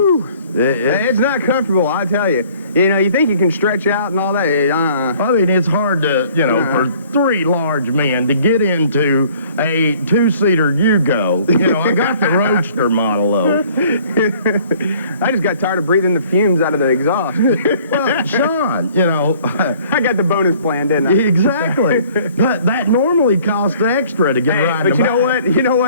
It's not comfortable, I tell you. You know, you think you can stretch out and all that. I mean, it's hard to, you know, for 3 large men to get into a 2-seater Yugo. You know, I got the Roadster model, though. I just got tired of breathing the fumes out of the exhaust. Well, Sean, you know. I got the bonus plan, didn't I? Exactly. That normally costs extra to get right in the back. But you know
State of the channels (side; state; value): both; inverted; correlation -0.55